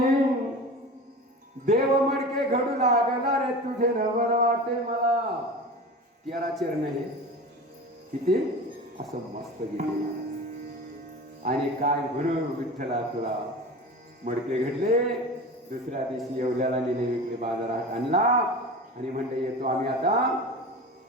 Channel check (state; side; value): normal; both; correlation 0.32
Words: देव मडके घडू लागला रे तुझे नवल वाटे मला. 13 चरण हे किती असं मस्त गेले. आणि काय म्हणू विठ्ठला तुला मडके घडले. दुसऱ्या दिवशी येवल्याला नेले, विकले, बाजारात आणला आणि म्हणले येतो आम्ही आता.